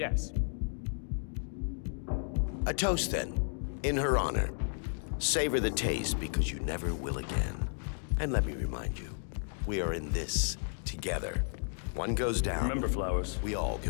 A toast, then, in her honor. Savor the taste, because you never will again. And let me remind you, we are in this together. One goes down. Remember, Flowers. We all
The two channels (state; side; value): silent; right; 56 dB below the other